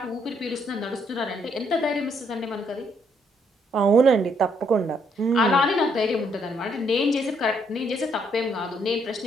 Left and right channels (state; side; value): normal; both; correlation 0.71